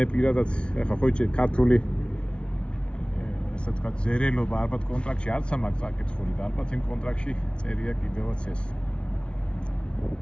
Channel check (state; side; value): late; right; 0.058 ms